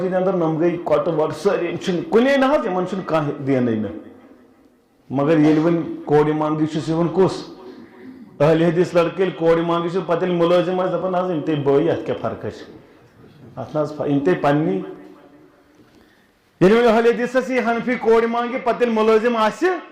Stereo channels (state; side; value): identical; both; correlation 1.00